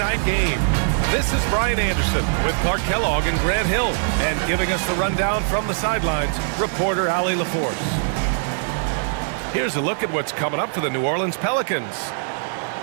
game. This is Brian Anderson with Clark Kellogg and Grant Hill, and giving us the rundown from the sidelines, reporter Allie LaForce. Here's a look at what's coming up for the New Orleans Pelicans.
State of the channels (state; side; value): silent; left; 64 dB below the other